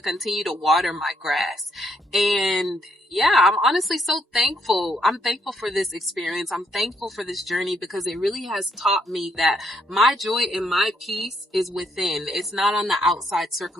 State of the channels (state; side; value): normal; both; correlation 0.73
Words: continue to water my grass. And yeah, I'm honestly so thankful. I'm thankful for this experience. I'm thankful for this journey, because it really has taught me that my joy and my peace is within. It's not on the outside